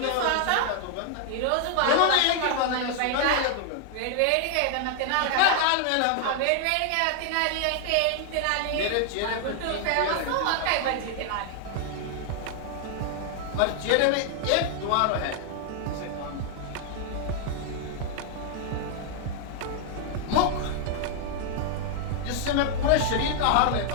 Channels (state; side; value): different; both; correlation 0.00